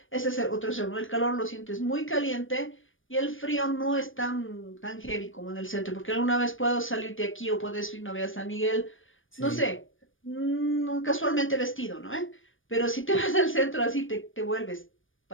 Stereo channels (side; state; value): right; late; 0.58 ms